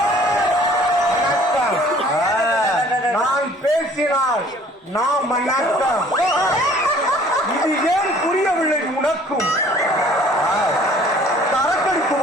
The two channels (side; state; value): both; normal; correlation 0.54